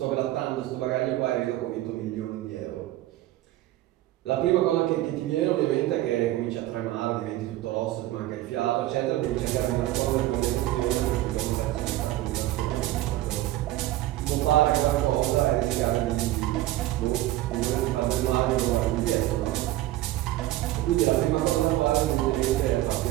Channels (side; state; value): left; quieter; 15.6 dB